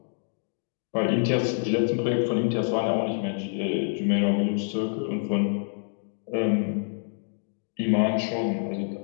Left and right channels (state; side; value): silent; right; digital silence